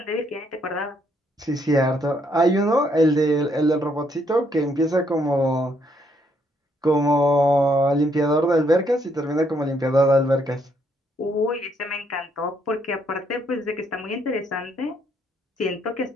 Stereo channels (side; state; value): both; normal; correlation 0.71